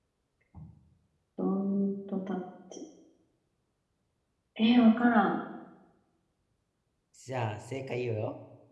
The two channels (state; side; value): identical; both; correlation 1.00